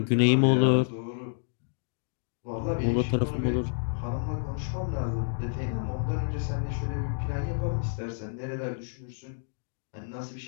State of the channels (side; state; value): right; silent; digital silence